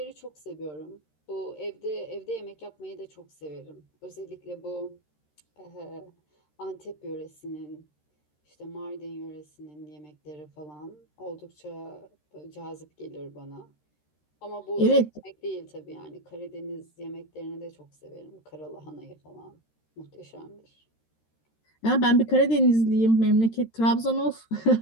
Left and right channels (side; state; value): right; late; 13 ms